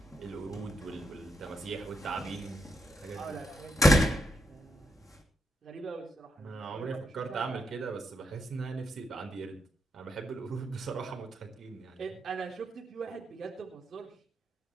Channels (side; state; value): both; normal; correlation 0.81